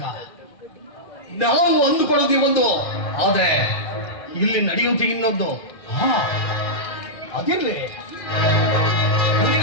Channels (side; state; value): right; late; 2.0 ms